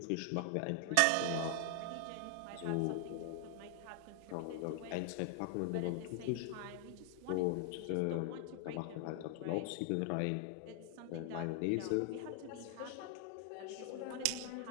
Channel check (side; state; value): both; different; correlation 0.00